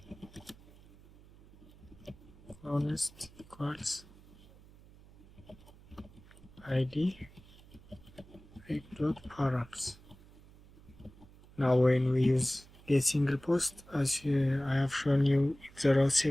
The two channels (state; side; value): noise; right; hum, 23 dB below the sound